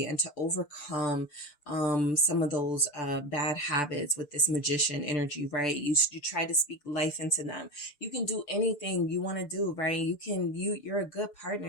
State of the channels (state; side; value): late; right; 6.8 ms